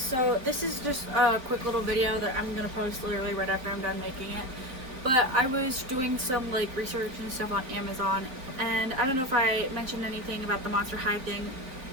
this is just a quick little video that I'm gonna post literally right after I'm done making it. But I was doing some like research and stuff on Amazon, and I don't know if I mentioned anything about the Monster High thing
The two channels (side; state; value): left; late; 3.7 ms